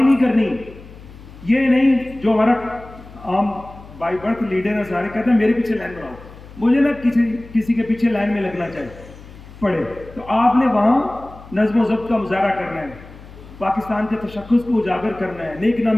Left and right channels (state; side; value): noise; left; hum, 19 dB below the sound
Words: کرنی. یہ نہیں جو ہمارا عام بائی برتھ لیڈر ہے سارے کہتے ہیں میرے پیچھے لائن بناؤ, مجھے نہ کسی کے پیچھے لائن میں لگنا چاہیے پڑے. تو آپ نے وہاں نظم و ضبط کا مظاہرہ کرنا ہے, پاکستان کے تشخص کو اجاگر کرنا ہے, نیک